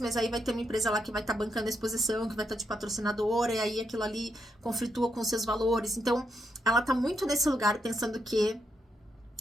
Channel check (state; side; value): normal; both; correlation 0.80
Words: mas aí vai ter uma empresa lá que vai estar bancando a exposição, que vai estar de patrocinadora, e aí aquilo ali conflitua com os seus valores. Então, ela tá muito nesse lugar pensando que